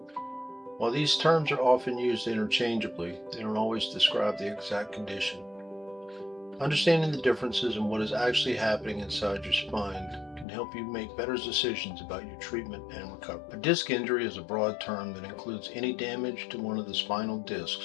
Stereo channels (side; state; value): right; drops out; at 10.5 s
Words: While these terms are often used interchangeably, they don't always describe the exact condition. Understanding the differences in what is actually happening inside your spine can help you make better decisions about your treatment and recovery. A disc injury is a broad term that includes any damage to one of the spinal